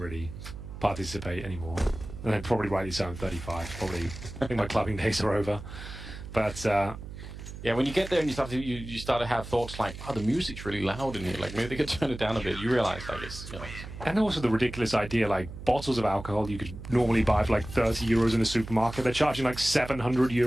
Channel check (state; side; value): noise; right; hum, 11 dB below the sound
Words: participate anymore. And then probably rightly so, I'm 35. Probably, I think my clubbing days are over. But, yeah, when you get there and you start to have thoughts like, oh, the music's really loud in here. Like, maybe they could turn it down a bit. You realize, like, it's, you know. And also the ridiculous idea, like, bottles of alcohol you could normally buy for like 30 euros in a supermarket. They're charging like 700